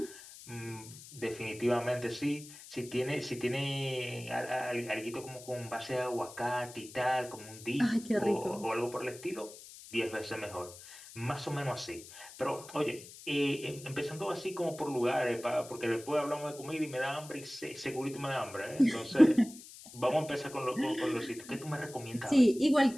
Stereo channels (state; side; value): noise; left; hiss, 16 dB below the sound